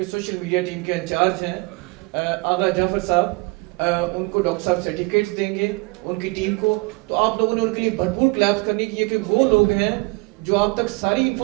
سوشل میڈیا ٹیم کے انچارج ہیں آغا جعفر صاحب, ان کو ڈاکٹر صاحب سرٹیفکیٹس دیں گے ان کی ٹیم کو. تو آپ لوگوں نے ان کے لیے بھرپور کلیپس کرنی ہے کہ وہ لوگ ہیں جو آپ تک ساری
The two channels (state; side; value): quieter; left; 27.3 dB